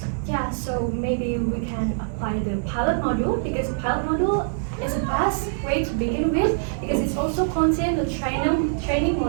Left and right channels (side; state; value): left; silent; digital silence